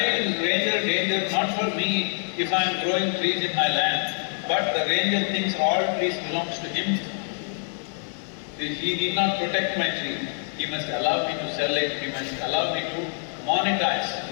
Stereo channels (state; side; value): silent; right; digital silence